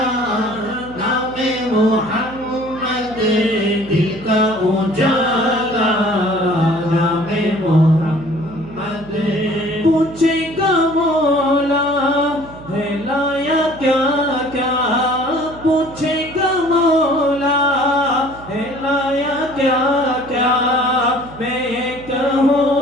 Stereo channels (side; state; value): right; noise; hum, 17 dB below the sound